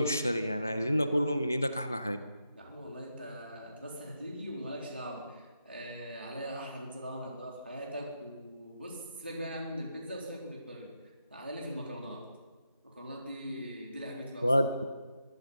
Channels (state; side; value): inverted; both; correlation -0.84